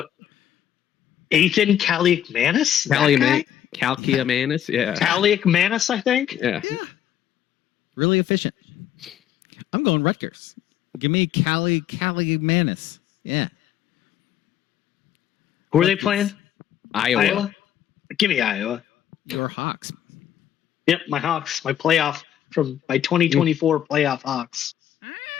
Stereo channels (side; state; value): right; quieter; 10.7 dB